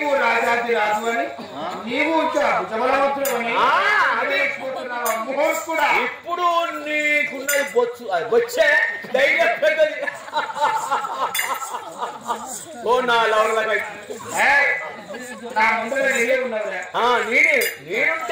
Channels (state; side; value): identical; both; correlation 1.00